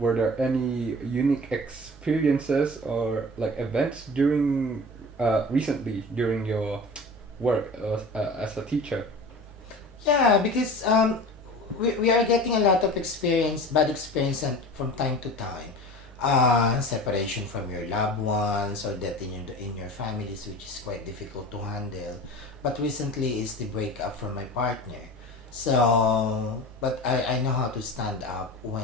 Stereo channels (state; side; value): normal; both; correlation 0.36